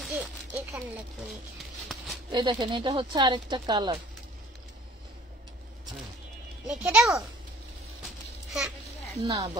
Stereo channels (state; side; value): normal; both; correlation 0.52